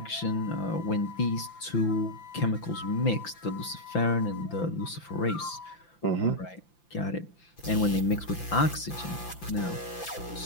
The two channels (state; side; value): late; right; 5.9 ms